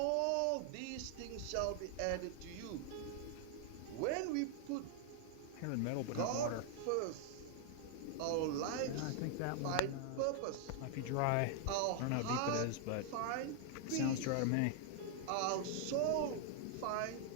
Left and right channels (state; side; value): different; both; correlation 0.00